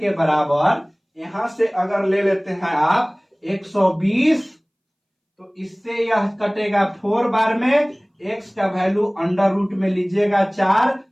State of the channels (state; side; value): identical; both; correlation 1.00